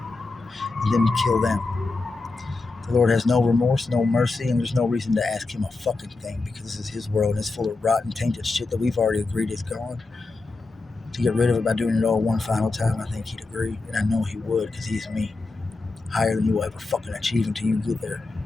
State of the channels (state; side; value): quieter; right; 3.6 dB